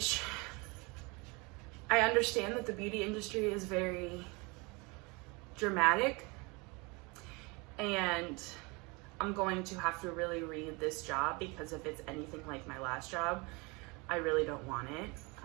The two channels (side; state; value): left; quieter; 27.7 dB